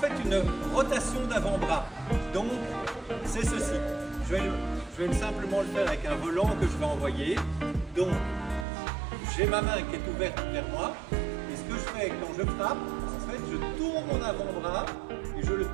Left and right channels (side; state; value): left; drops out; at 8.7 s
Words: une rotation d'avant-bras. Donc c'est ceci. Je vais simplement le faire avec un volant que je vais envoyer. Donc j'ai ma main qui est ouverte vers moi. Et ce que je fais quand je frappe, en fait je tourne mon avant-bras et je le